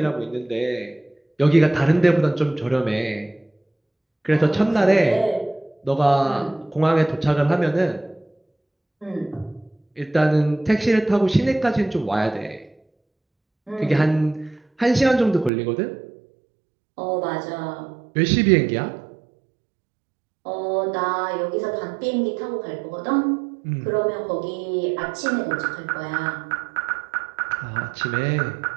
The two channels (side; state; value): left; drops out; at 15.5 s